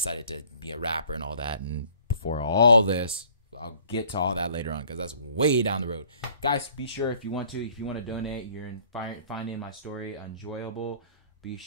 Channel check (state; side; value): inverted; both; correlation -0.56